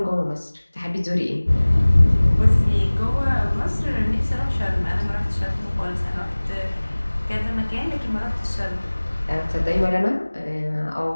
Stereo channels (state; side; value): inverted; both; correlation -1.00